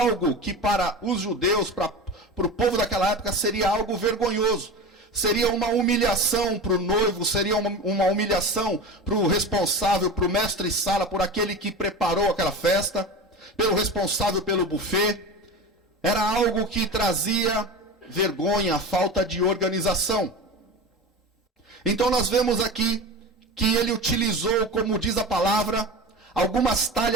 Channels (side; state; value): both; normal; correlation 0.29